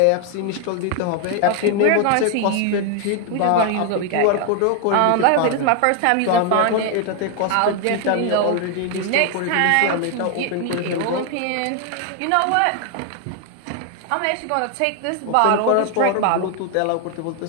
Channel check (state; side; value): different; both; correlation 0.01